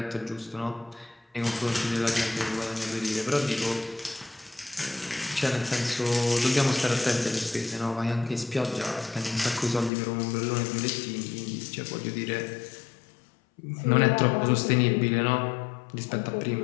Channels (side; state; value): right; drops out; at 9.9 s